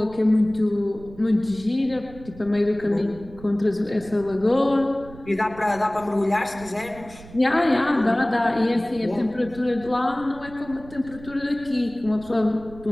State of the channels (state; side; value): noise; right; rumble, 18 dB below the sound